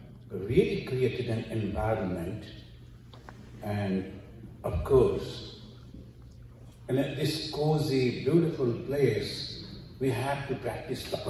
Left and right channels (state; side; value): identical; both; correlation 1.00